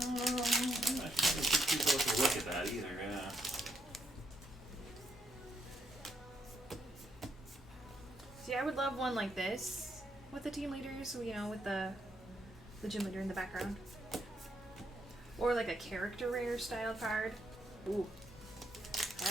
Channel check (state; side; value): normal; both; correlation 0.77